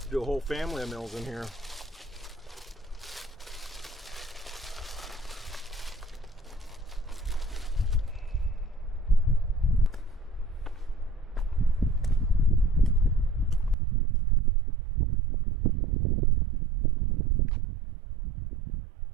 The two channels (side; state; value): left; drops out; at 13.8 s